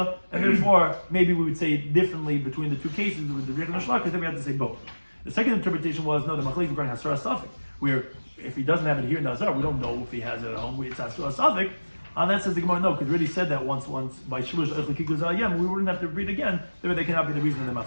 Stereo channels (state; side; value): inverted; both; correlation -1.00